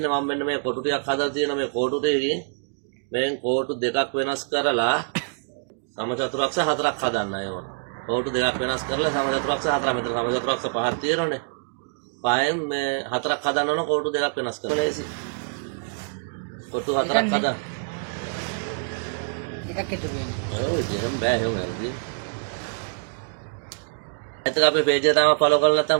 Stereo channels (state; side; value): silent; left; digital silence